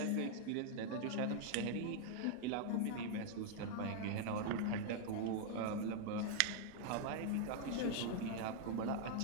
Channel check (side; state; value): both; different; correlation -0.01